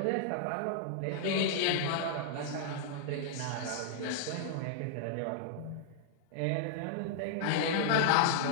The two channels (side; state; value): both; different; correlation -0.01